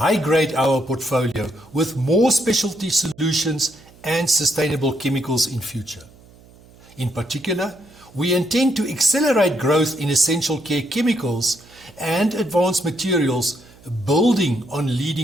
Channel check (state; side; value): noise; right; hum, 25 dB below the sound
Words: our portfolio with more specialty solutions and sustainable chemicals in future. In particular, we intend to accelerate growth in essential care chemicals and advanced materials, building on